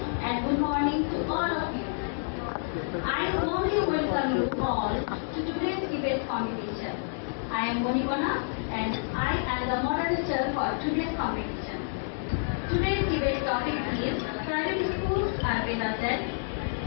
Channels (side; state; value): right; silent; digital silence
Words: and good morning to all of you. I warmly welcome you all to today's debate competition. I am Monibana and I am the moderator for today's competition. Today's debate topic is private schools are better than.